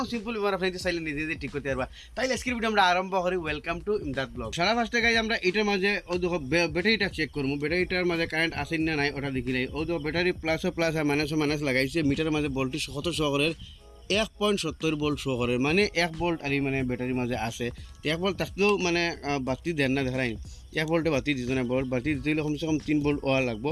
সিম্পল বেমার আপনাদের চাইলে নিজে নিজে ঠিক করতে পারবা তাইলে আজকের ভিডিও আমরা আরম্ভ করি ওয়েলকাম টু ইমদাদ ব্লগ সারা ফার্স্টে গাইজ আমরা এটার মাঝে ও দেখো ব্যাটারিটা চেক করবো ব্যাটারিটার মাঝে কারেন্ট আসে না নাই ওটা দেখি নাই ও দেখো ব্যাটারি প্লাসও প্লাস আর মাইনাসও লাগাইছে মিটারের মাঝে ভোল্টেজ কত শহরের 1.70 ভোল্ট শো করে মানে 1 ভোল্ট আর মানে ব্যাটারির মাঝে আছে 1 ভোল্ট থাকলেও মানে বাতি দেন না দেখাই 1 ভোল্টে বাতি দিত না বাতি দিতে হলে কমসে কম 3 ভোল্ট ওয়া লাগবো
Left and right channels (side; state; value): both; identical; correlation 1.00